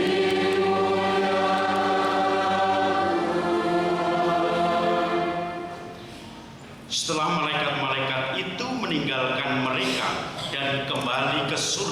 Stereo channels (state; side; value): identical; both; correlation 1.00